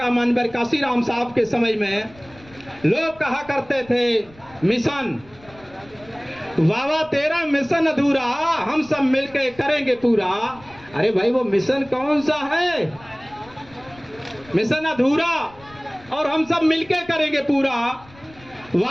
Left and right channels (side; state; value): left; noise; rumble, 25 dB below the sound